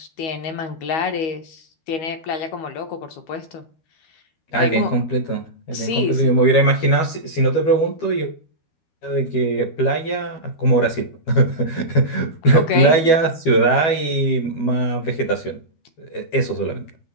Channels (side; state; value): right; late; 12 ms